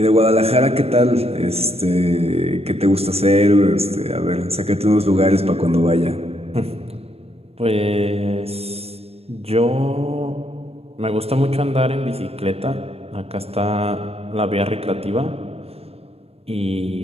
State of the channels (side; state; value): left; late; 0.29 ms